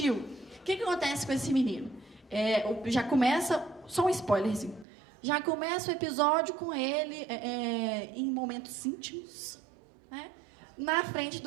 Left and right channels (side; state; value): left; drops out; at 4.9 s